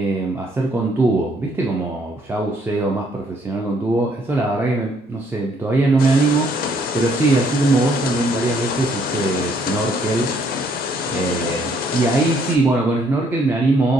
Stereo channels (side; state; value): both; normal; correlation 0.67